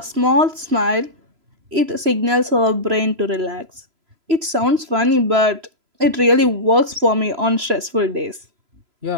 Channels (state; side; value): late; left; 3.0 ms